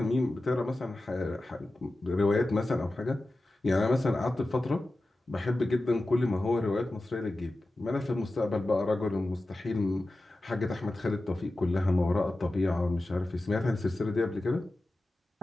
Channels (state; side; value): normal; both; correlation 0.94